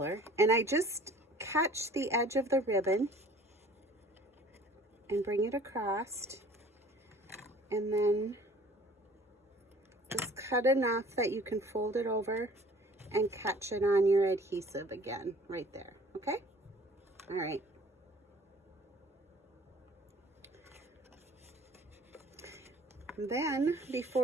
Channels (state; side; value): normal; both; correlation 0.50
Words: and I just catch the edge of the ribbon and bring it across, and then just cut enough that you can fold it over and catch it on your adhesive again right there. Okay, all right. Then